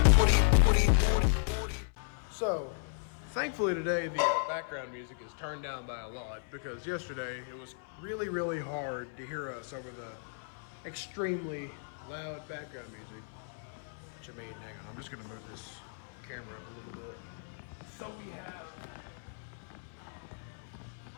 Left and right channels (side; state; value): right; silent; 55 dB below the other